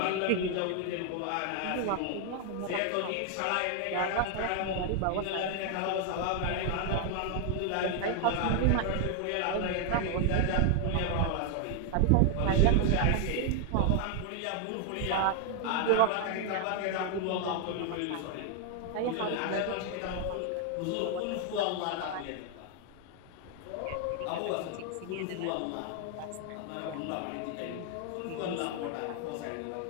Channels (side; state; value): both; different; correlation 0.00